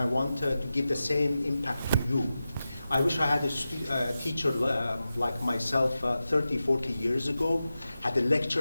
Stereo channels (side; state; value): both; inverted; correlation -0.93